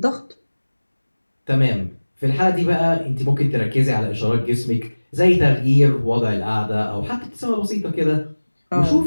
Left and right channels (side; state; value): both; inverted; correlation -1.00